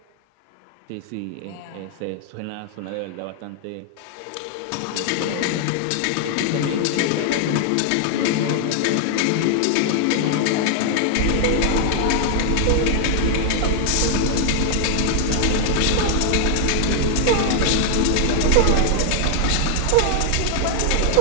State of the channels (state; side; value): different; both; correlation 0.00